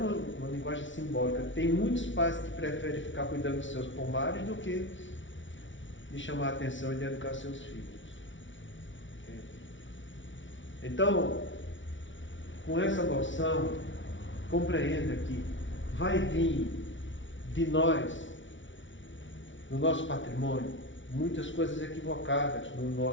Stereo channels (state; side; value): late; right; 0.56 ms